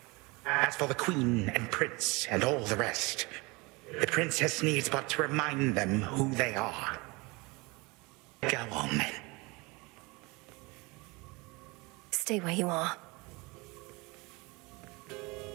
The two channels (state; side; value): quieter; left; 25.6 dB